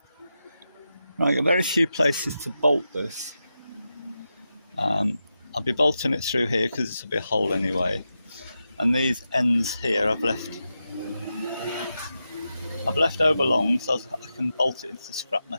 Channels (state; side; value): inverted; both; correlation -0.89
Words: Right, there are very few places to bolt this. I'll be bolting it through here because this will be a hole anyway. And these ends here I've left overlong so I can bolt it into the scrap